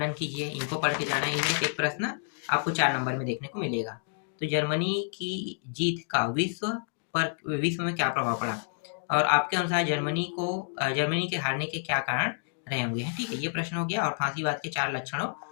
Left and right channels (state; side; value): silent; right; digital silence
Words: कीजिए, इनको पढ़ के जाना है। इनमें से एक प्रश्न आपको 4 नंबर में देखने को मिलेगा। तो जर्मनी की जीत का विश्व में क्या प्रभाव पड़ा, और आपके अनुसार जर्मनी के हारने के क्या कारण रहे होंगे। ठीक है, ये प्रश्न हो गया। और फांसीवाद के 4 लक्षणों